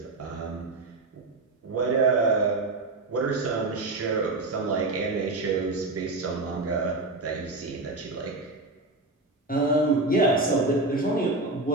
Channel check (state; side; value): quieter; left; 3.1 dB